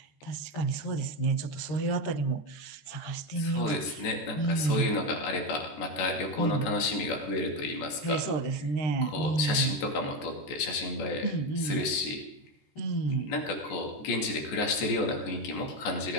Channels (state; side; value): late; right; 14 ms